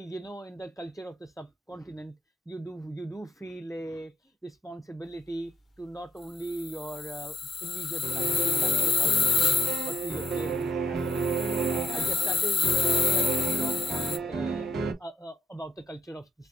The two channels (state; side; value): normal; both; correlation 0.78